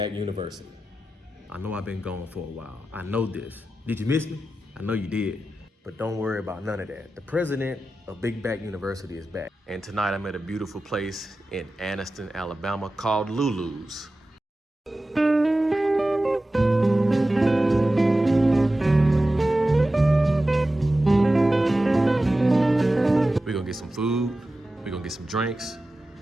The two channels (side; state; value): both; normal; correlation 0.94